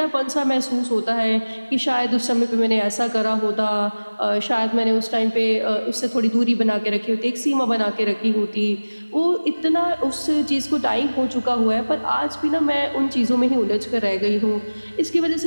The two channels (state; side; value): inverted; both; correlation -1.00